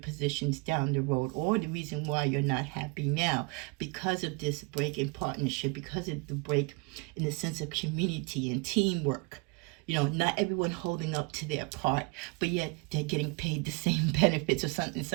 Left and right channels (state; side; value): quieter; left; 29.5 dB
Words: down the road, or the reason why you're not happy now because of this break in partnership, because of the break in the sense of community and teamwork. Not everyone holding up to their part, but yet they're getting paid the same benefits, or in